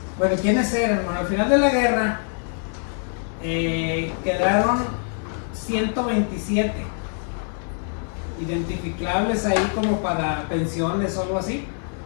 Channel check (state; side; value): silent; right; 59 dB below the other